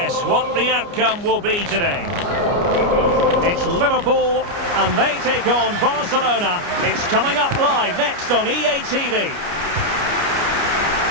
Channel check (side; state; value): left; late; 29 ms